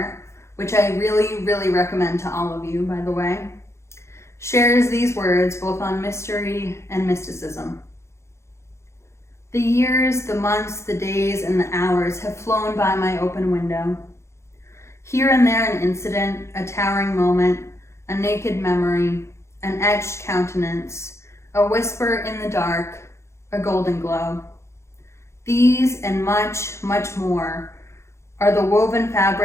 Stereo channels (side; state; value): right; late; 0.13 ms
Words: which I really, really recommend to all of you, by the way, shares these words both on mystery and mysticism. The years, the months, the days, and the hours have flown by my open window. Here and there an incident, a towering moment, a naked memory, an etched countenance, a whisper in the dark, a golden glow. These and much, much more are the woven